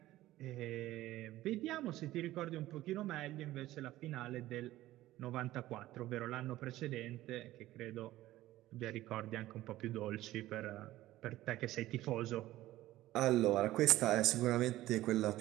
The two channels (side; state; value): left; quieter; 15.7 dB